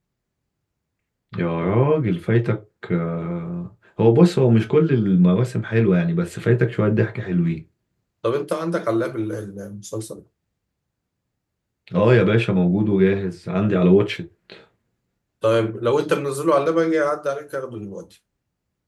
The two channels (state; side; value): identical; both; correlation 1.00